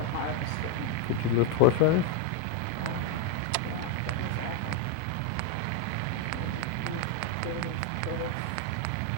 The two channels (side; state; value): both; different; correlation 0.01